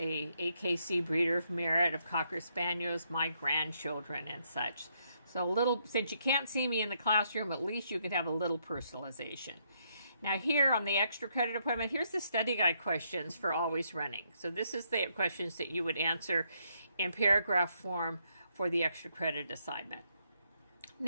AKC Breeder of Merit of Cocker Spaniels, my grandchildren and such. So a little, since you can't see me in the classroom, at least you can have a little personalization. Now here on the extra credit appointment, here's the study guide questions for Always Running. So this is the questions that you would answer in paragraph form for the extra credit assignment.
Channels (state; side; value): inverted; both; correlation -0.75